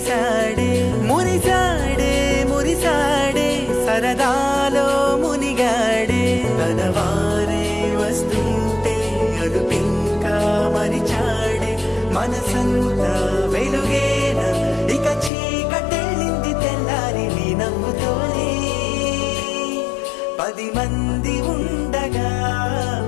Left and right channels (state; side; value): drops out; right; at 15.3 s